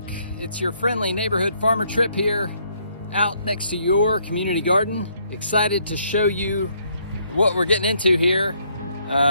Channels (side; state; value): both; inverted; correlation -0.69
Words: it's your friendly neighborhood farmer trip here out next to your community garden. Excited to show you what we're getting into here,